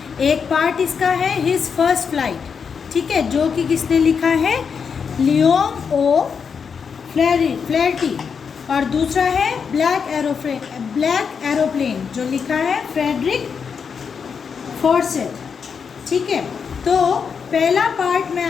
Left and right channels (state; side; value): quieter; right; 6.3 dB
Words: एक पार्ट इसका है हिज फर्स्ट फ्लाइट, ठीक है, जो कि किसने लिखा है, लियोंग ओ फ्लैटी, और दूसरा है ब्लैक एरोप्लेन जो लिखा है फ्रेडरिक फॉर्सेट, ठीक है। तो पहला पार्ट मैं